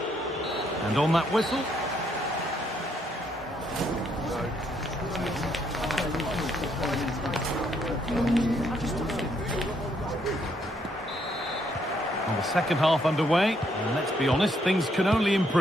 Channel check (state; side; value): normal; both; correlation 0.72